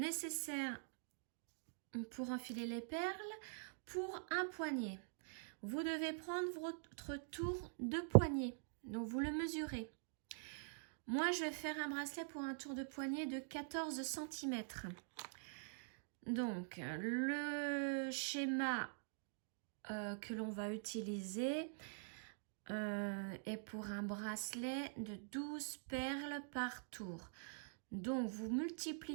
pour enfiler les perles, pour un poignet, vous devez prendre votre tour de poignet, donc vous le mesurez. Moi je vais faire un bracelet pour un tour de poignet de 14 cm. Donc le schéma que l'on va utiliser est pour un bracelet de 12 perles par tour. Donc vous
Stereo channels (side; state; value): left; silent; digital silence